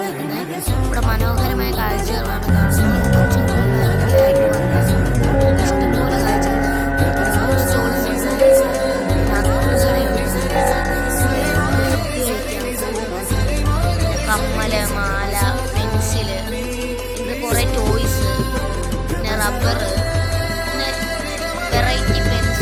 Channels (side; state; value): both; identical; correlation 1.00